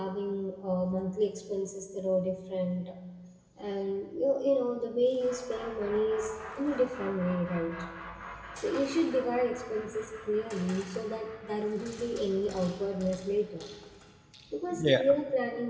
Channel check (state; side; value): identical; both; correlation 1.00